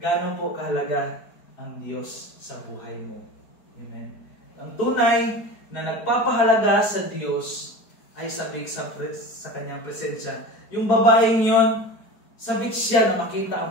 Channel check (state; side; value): late; right; 4.7 ms